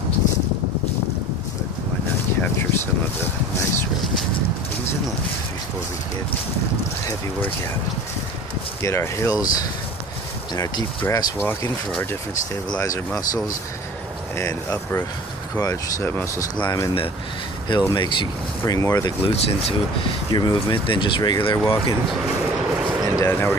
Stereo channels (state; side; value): normal; both; correlation 0.43